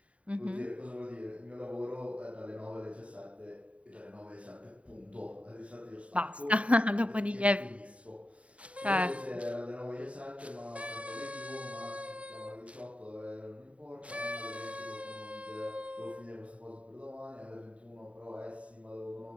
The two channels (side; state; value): left; late; 0.065 ms